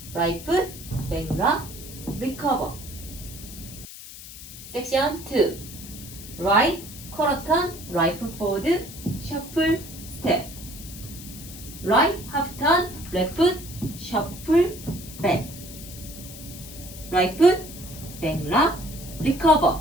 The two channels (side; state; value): left; noise; hiss, 14 dB below the sound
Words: right foot, back rock, recover. Section 2. Right quarter turn, right foot forward, shuffle, step. Right half turn, left foot, shuffle, back. Right foot, back rock, recover,